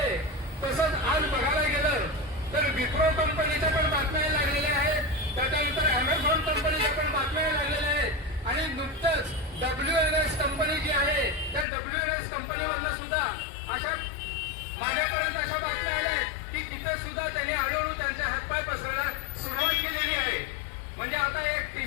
तसंच आज बघायला गेलं तर विप्रो कंपनीच्या पण बातम्या लागलेल्या आहेत, त्याच्यानंतर अमेझॉन कंपनीच्या पण बातम्या लागलेल्या आहेत आणि नुकतंच WNS कंपनी जी आहे त्या WNS कंपनीमधनं सुद्धा अशा माझ्यापर्यंत अशा बातम्या आल्या की तिथे सुद्धा त्यांनी हळूहळू त्यांचे हातपाय पसरायला सुरुवात केलेली आहे. म्हणजे आता एक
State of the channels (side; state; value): right; drops out; at 11.7 s